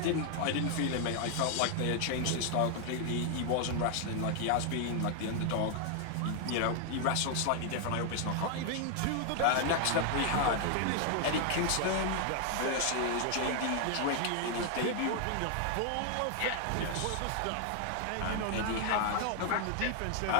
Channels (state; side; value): different; both; correlation 0.00